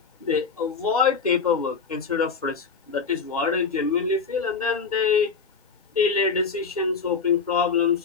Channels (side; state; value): right; quieter; 5.2 dB